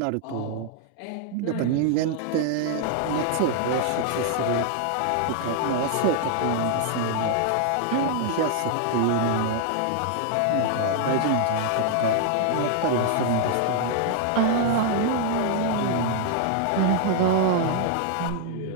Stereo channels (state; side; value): different; both; correlation 0.00